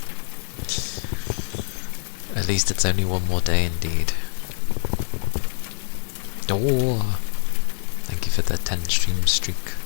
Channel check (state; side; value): silent; right; digital silence